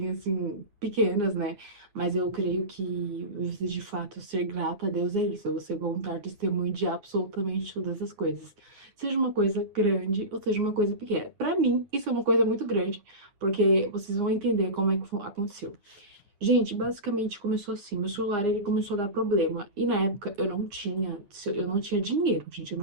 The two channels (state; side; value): late; left; 9.7 ms